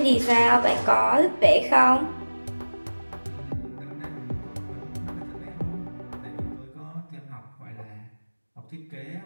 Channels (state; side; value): inverted; both; correlation -1.00